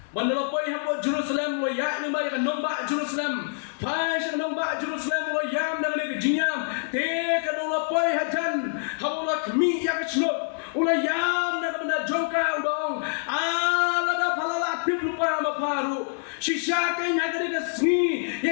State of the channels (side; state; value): right; silent; digital silence